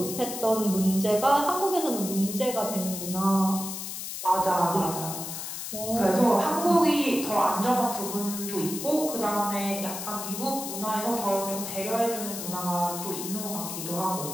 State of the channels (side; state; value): left; noise; hiss, 6 dB below the sound